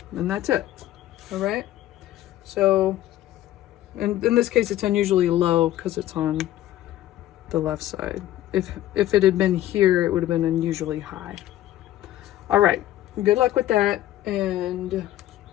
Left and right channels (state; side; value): quieter; right; 13.7 dB